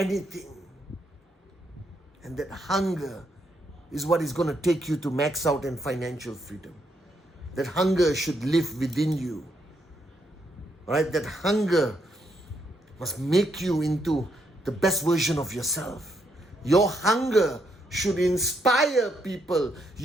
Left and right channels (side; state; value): both; normal; correlation 0.76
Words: And that hunger is what is going to take you to max out in financial freedom. That hunger should live within you. Right? That hunger must make you into the best version of yourself. Your hunger should inspire people.